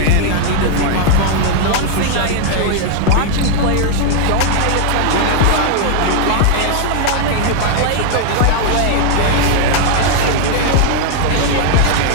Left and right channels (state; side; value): different; both; correlation 0.00